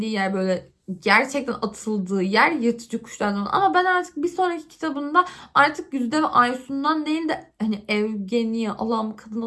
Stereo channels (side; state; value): both; identical; correlation 1.00